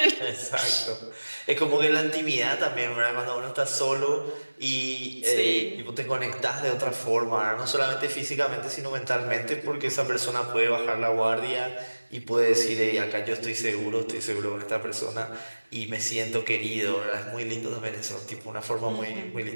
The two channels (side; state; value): both; inverted; correlation -1.00